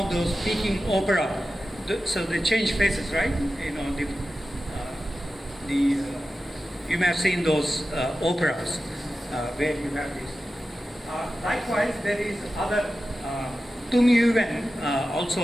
those Peking opera, so they change faces, right? You may have seen those operas where you have this. Likewise, there is other, Tung Yuwen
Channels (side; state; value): both; normal; correlation 0.93